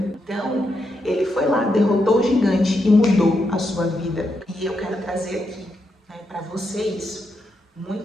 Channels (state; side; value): normal; both; correlation 0.83